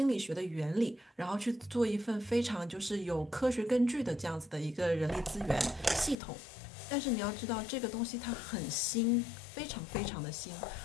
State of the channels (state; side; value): drops out; right; at 6.2 s